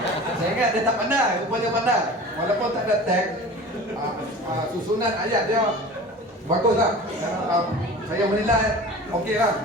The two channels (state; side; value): normal; both; correlation 0.38